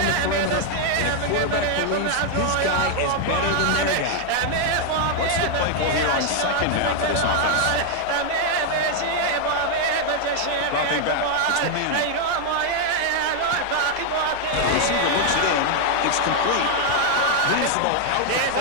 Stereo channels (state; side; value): different; both; correlation 0.00